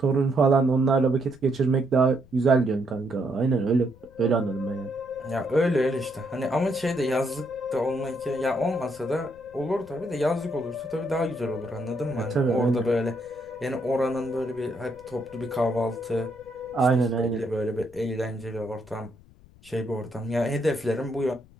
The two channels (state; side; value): noise; left; rumble, 25 dB below the sound